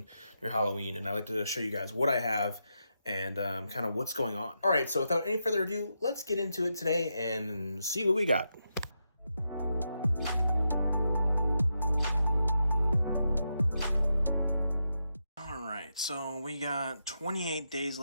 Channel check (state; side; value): inverted; both; correlation -0.85